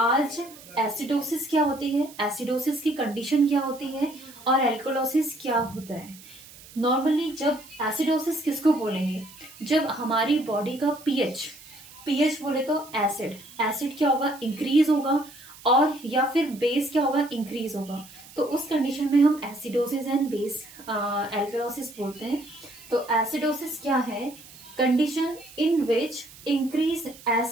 एसिडोसिस क्या होती है, एसिडोसिस की कंडीशन क्या होती है, और एल्कलोसिस क्या होता है। नॉर्मली जब एसिडोसिस किसको बोलेंगे, जब हमारी बॉडी का पीएच पीएच बोले तो एसिड एसिड क्या होगा, इंक्रीज होगा, और या फिर बेस क्या होगा, इंक्रीज होगा। तो उस कंडीशन में हम एसिडोसिस एंड बेस एल्कलोसिस बोलते हैं। तो एसिडोसिस क्या है, condition in which increase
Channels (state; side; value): noise; right; hiss, 20 dB below the sound